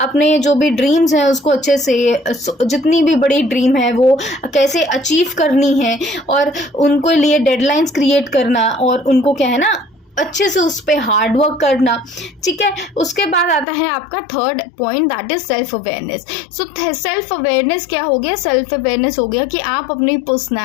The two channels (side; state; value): right; drops out; at 13.7 s